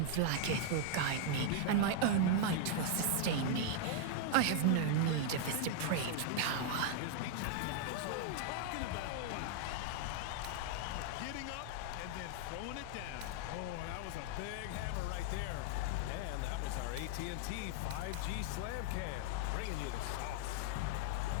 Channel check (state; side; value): different; both; correlation 0.00